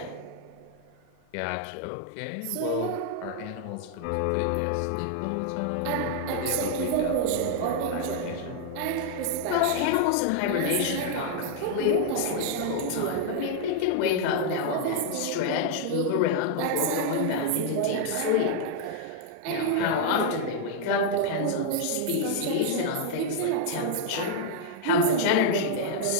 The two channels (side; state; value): both; different; correlation -0.01